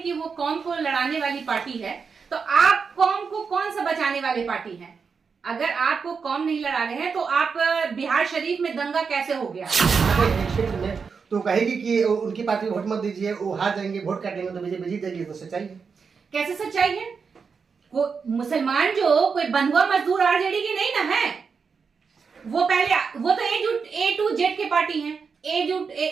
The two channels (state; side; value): quieter; left; 5.6 dB